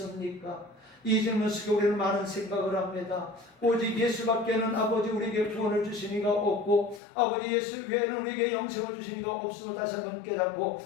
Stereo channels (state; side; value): drops out; right; at 7.0 s